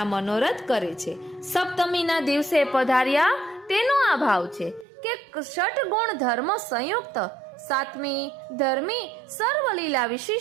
મનોરથ કરે છે. સપ્તમીના દિવસે પધાર્યા તેનો આ ભાવ છે કે ષટ ગુણ ધર્મ સંયુક્ત, સાતમી ધર્મી સર્વલીલા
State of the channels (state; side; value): drops out; left; at 4.9 s